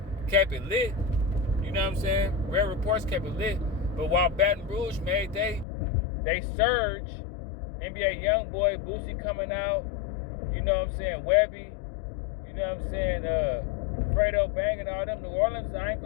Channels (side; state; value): right; drops out; at 5.7 s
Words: kept it lit. You know what I'm saying? Rare Reports kept it lit. But while Baton Rouge made they surge, NBA Youngboy, Boosie coming out, you know what I'm saying, Webby, you know what I'm saying, Fredo Bang and all them. New Orleans, I